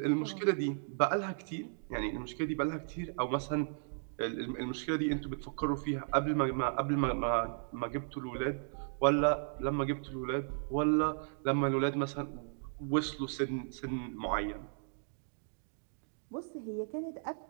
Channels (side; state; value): left; silent; digital silence